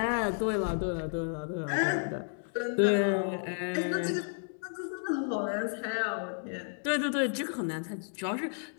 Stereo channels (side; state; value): right; silent; 56 dB below the other